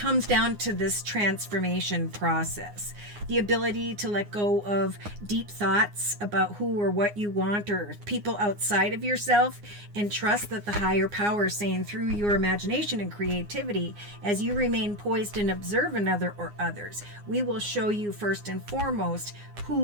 down to this transformation process. The ability to let go of deep thoughts about who or what you want or people outside of yourself, and trust that the higher power is saying through your imagination and creativity, as you remain poised and observe another or others, we will show you first and foremost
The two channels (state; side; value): late; left; 9.7 ms